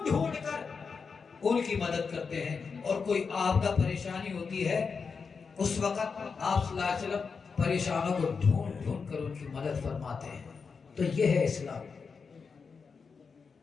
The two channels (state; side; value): quieter; right; 5.3 dB